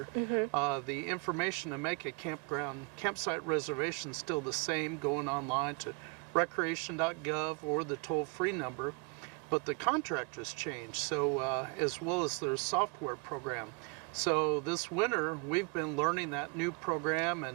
The information to make a campsite reservation is still the same, going online to recreation.gov or the toll-free number, but the contractors changed, so as well as their software program. So this winter, we've been learning that new program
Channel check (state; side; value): quieter; left; 32.9 dB